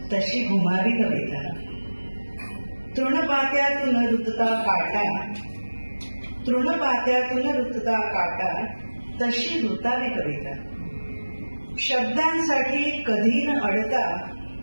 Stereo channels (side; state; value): both; inverted; correlation -1.00